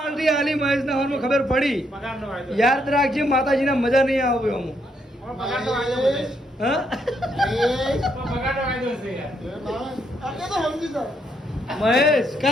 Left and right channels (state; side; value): normal; both; correlation 0.75